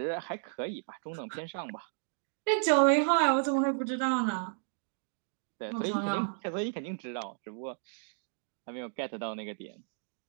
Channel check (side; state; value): left; silent; digital silence